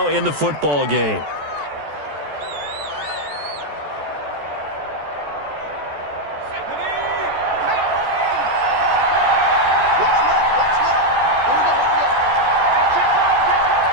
in the football game.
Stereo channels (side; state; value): left; late; 14 ms